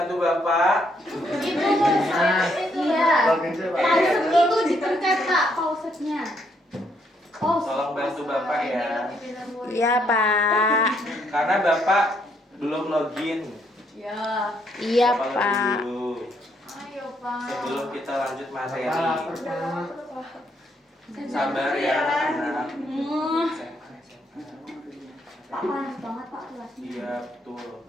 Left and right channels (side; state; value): both; normal; correlation 0.73